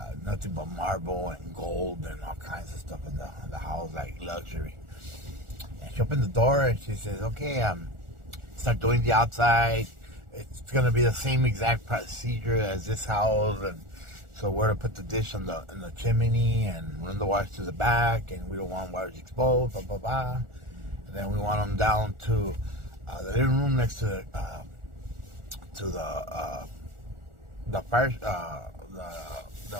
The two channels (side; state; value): left; late; 1.4 ms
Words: Nothing but marble and gold and all kinds of stuff in the house, like luxury. And she opened the door and she says, okay, start doing the outside. It's going to be the same exact procedure as this house. And so we're to put the dish in the chimney and run the wires to the back, and we don't want wires exposed, blah, blah, blah. And then we want them down to the living room next to the fire,